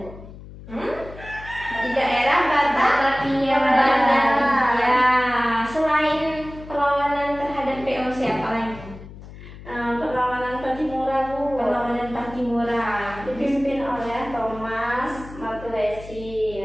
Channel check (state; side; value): noise; left; hum, 16 dB below the sound